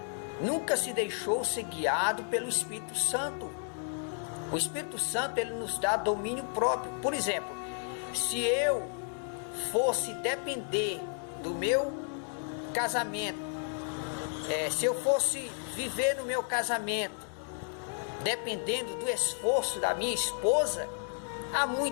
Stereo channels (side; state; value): right; silent; 56 dB below the other